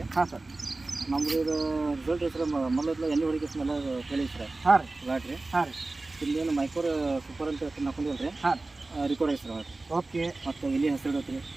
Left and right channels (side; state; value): left; quieter; 3.2 dB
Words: ಹಾಂ ಸರ್. ನಮ್ಮದು ಇದು ರಿಸಲ್ಟ್ ಹೆಸರು ಮೊದಲು ಎಣ್ಣೆ ಹೊಡಿಕೆ ಸ್ಮೆಲ್ಲ ಕೇಳಿ ಸರ್. ಹಾಂ ರೀ. ಲಾಟ್ರಿ. ಹಾಂ ರೀ. ಇಲ್ಲೇನು ಮೈಕೋರ್ ಸೂಪರ್ ಅಂತ ಹೆಸರು ಹಾಕೊಂಡಿಲ್ಲ ರೀ. ಹಾಂ, ರಿಕಾರ್ಡ್ ಹೆಸರು. ಓಕೆ. ಮತ್ತು ಇಲ್ಲಿ ಹೆಸರು ಇಡತ್ರಿ.